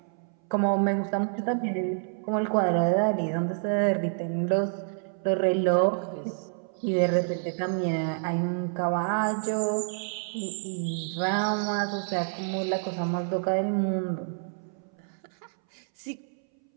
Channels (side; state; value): left; silent; 59 dB below the other